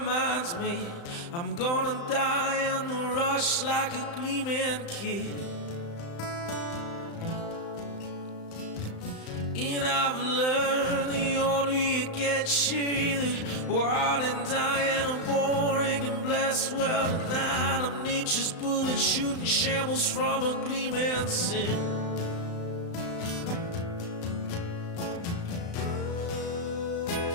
made. I'm gonna die on the rush like a gleaming kid. And I've learned the older you get, you're either wild and dying or boring and blessed. Well, tonight I'm nature's bullet shooting shambles from a gleaming sin.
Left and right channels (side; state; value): right; late; 35 ms